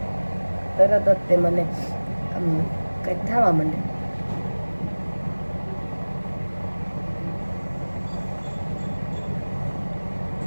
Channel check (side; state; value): both; inverted; correlation -1.00